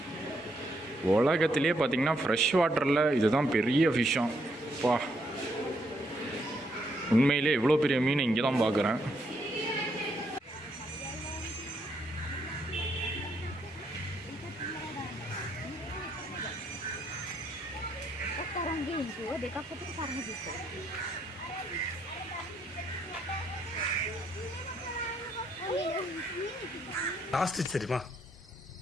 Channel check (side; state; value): both; normal; correlation 0.74